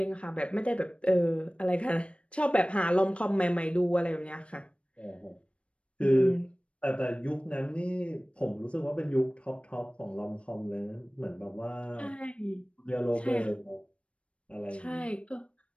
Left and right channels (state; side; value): late; right; 0.060 ms